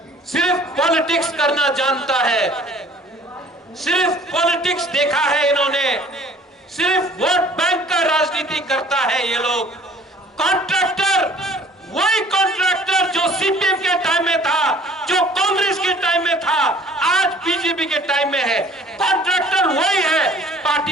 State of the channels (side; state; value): both; normal; correlation 0.52